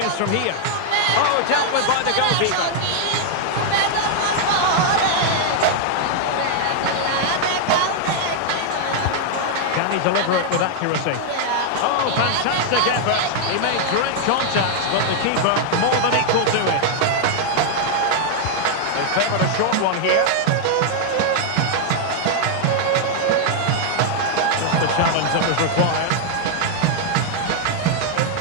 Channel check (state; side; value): different; both; correlation 0.00